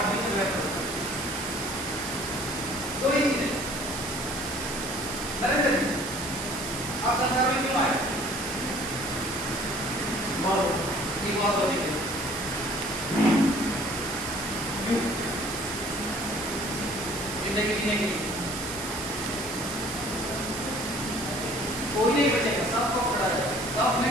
में बदल। दो ही चीजें। नरेंद्र जी, आप संसार में क्यों आए? बहुत होने के लिए। जिंदगी जीने के लिए कोई नहीं बचेगा, सबको पकड़ा जाएगा। सब ने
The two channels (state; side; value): noise; right; hiss, 8 dB below the sound